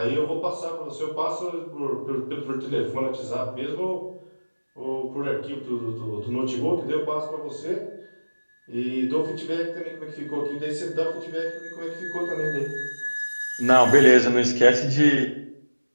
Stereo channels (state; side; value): inverted; both; correlation -1.00